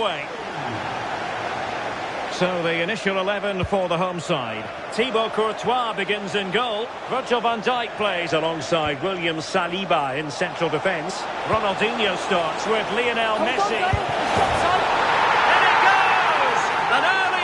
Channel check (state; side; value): identical; both; correlation 1.00